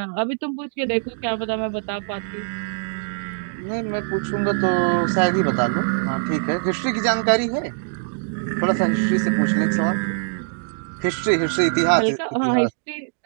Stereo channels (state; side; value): silent; left; digital silence